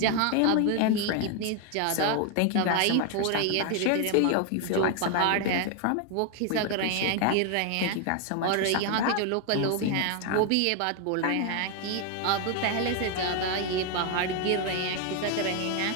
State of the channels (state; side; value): different; both; correlation 0.01